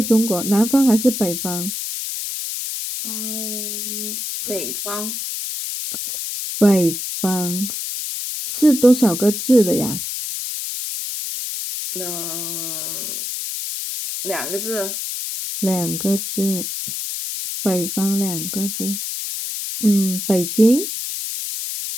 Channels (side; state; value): left; noise; hiss, 5 dB below the sound